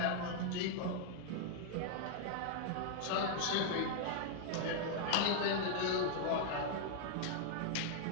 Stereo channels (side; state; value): both; different; correlation -0.01